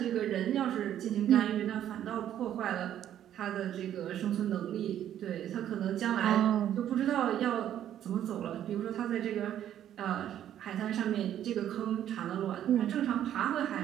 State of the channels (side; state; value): left; quieter; 10.9 dB